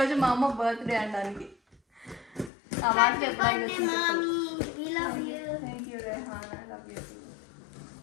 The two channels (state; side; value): drops out; right; at 2.5 s